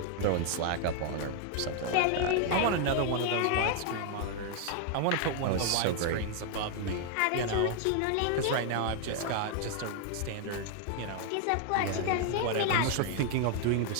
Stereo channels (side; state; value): both; different; correlation 0.00